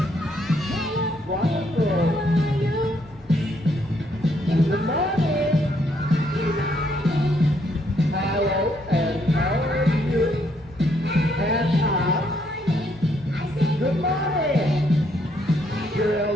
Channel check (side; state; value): both; normal; correlation 0.72